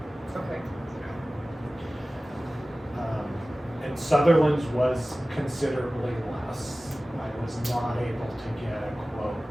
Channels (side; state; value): both; normal; correlation 0.97